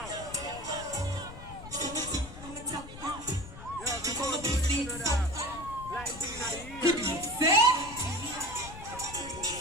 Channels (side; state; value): left; noise; rumble, 13 dB below the sound